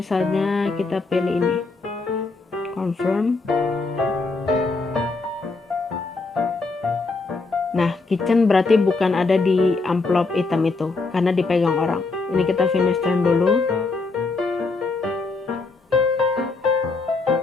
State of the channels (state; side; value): quieter; right; 3.8 dB